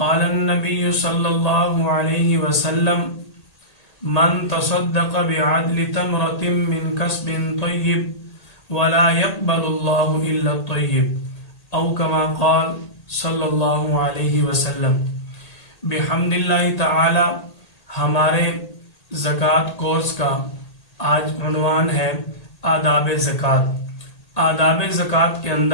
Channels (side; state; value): right; late; 1.8 ms